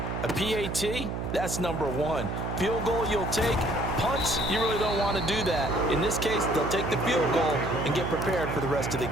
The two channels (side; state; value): right; noise; hum, 4 dB below the sound